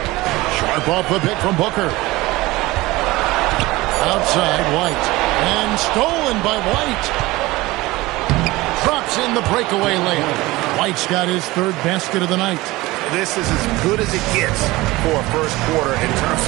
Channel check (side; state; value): left; quieter; 19.9 dB